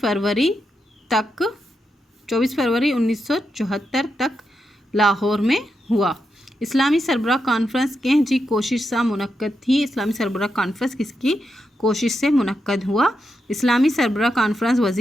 1974 तक लाहौर में हुआ। इस्लामी सरबराह कॉन्फ्रेंस कंहिं जी कोशिश सां मुनक़द थी। इस्लामी सरबराह कॉन्फ्रेंस किसकी कोशिश से मुनक़द हुआ? इस्लामी सरबराह कॉन्फ्रेंस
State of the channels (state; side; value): normal; both; correlation 0.85